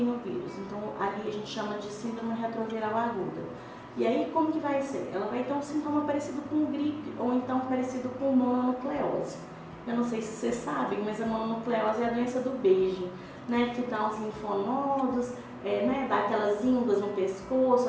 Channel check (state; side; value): identical; both; correlation 1.00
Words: o vírus, então ali a gente chama de síndrome retroviral aguda. E aí como que vai ser? Ela vai ter um sintoma parecido com gripe ou então parecido com mononucleose. Eu não sei se vocês sabem, mas a mononucleose é a doença do beijo, né? Que dá uns linfonodos, né? Dá aquelas ínguas no pescoço,